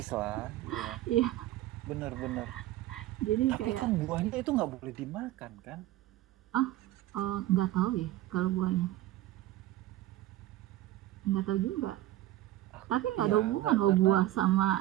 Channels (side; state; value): left; quieter; 15.0 dB